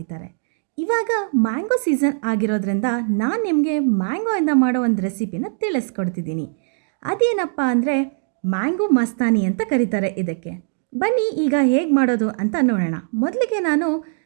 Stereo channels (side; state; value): left; silent; digital silence